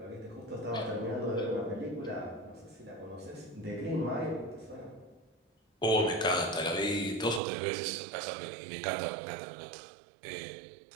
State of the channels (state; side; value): drops out; left; at 7.4 s